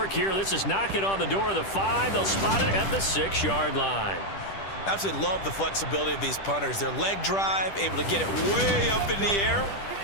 here. This is knocking on the door of the 5. They'll spot it at the 6-yard line. Absolutely love the flexibility of these punters. Their leg drive, able to get it way up in the air,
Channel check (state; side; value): late; right; 10 ms